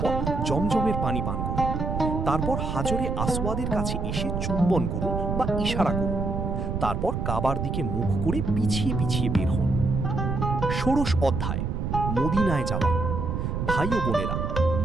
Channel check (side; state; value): right; noise; rumble, 2 dB below the sound